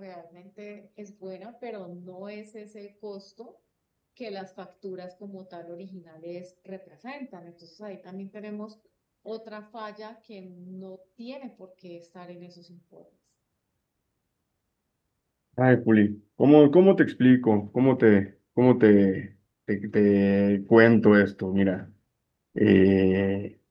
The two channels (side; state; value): both; identical; correlation 1.00